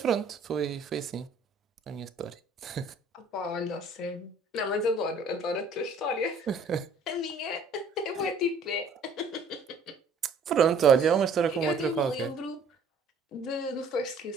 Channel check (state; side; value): quieter; left; 3.4 dB